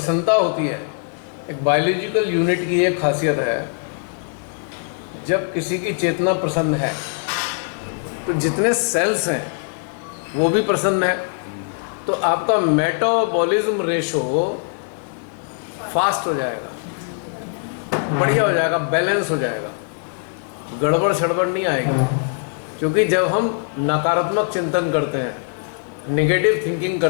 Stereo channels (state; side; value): silent; right; 65 dB below the other